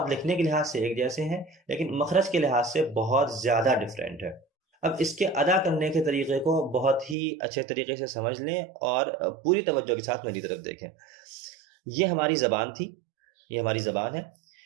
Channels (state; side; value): drops out; left; at 7.2 s